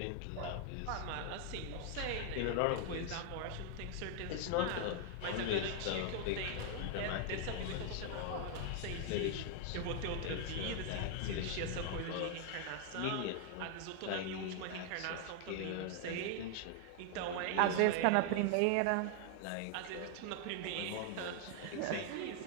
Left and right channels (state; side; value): different; both; correlation 0.00